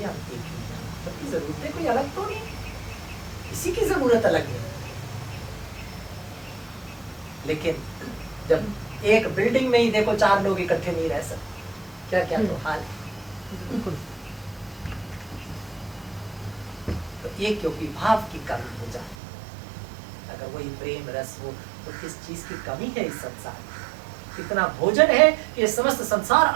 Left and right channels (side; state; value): left; drops out; at 19.2 s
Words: हम एक ही हैं, सबकी जरूरतें कोई अलग तो नहीं, किसी की जरूरत अलग नहीं। लेकिन जब एक बिल्डिंग में ही देखो 4 लोग इकट्ठे नहीं रह सकते, क्या क्या तो हाल है। तो ये क्योंकि भाव की कमी हो जाती है। अगर वही प्रेम रस हो तो किस चीज की कमी है इस संसार में। इतना भोजन है कि ये समस्त संसार